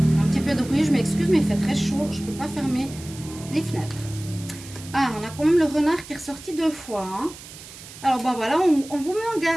Un petit peu de bruit, je m'excuse, mais il fait très chaud. Je ne peux pas fermer les fenêtres. Ah, on a quand même le renard qui est ressorti 2 fois. Hein. Alors, bon, voilà, on vous met en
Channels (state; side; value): noise; right; hiss, 16 dB below the sound